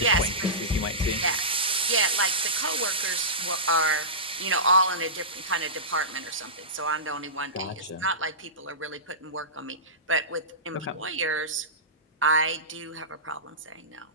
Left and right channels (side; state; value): both; normal; correlation -0.19